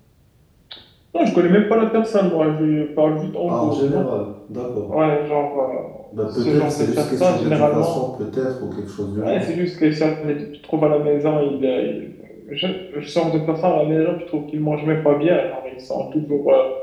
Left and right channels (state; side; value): identical; both; correlation 1.00